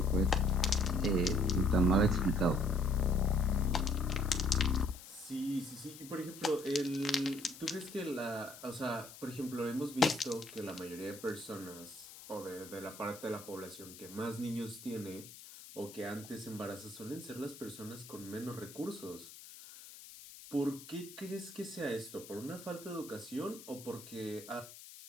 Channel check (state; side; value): noise; left; hiss, 16 dB below the sound